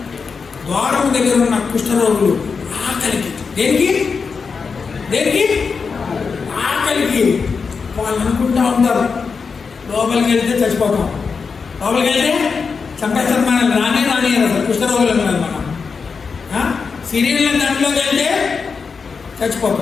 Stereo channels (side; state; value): right; quieter; 5.2 dB